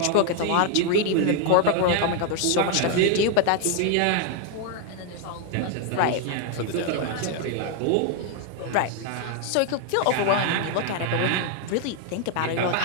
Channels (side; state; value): both; different; correlation 0.00